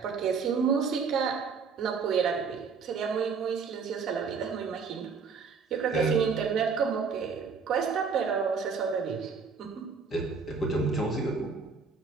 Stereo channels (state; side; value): quieter; left; 5.4 dB